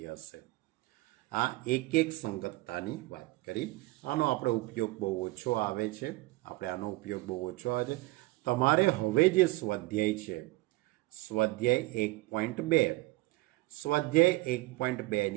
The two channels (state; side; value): quieter; left; 20.7 dB